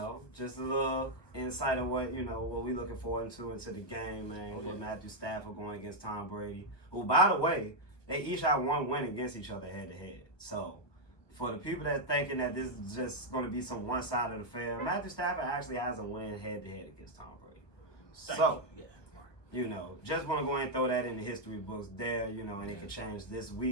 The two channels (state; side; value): late; right; 1.4 ms